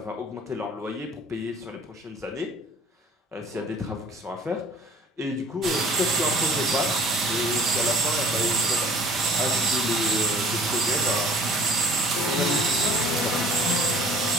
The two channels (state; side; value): normal; both; correlation 0.51